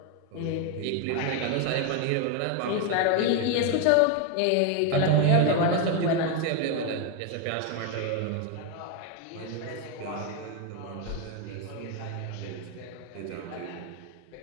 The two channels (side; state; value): both; different; correlation 0.01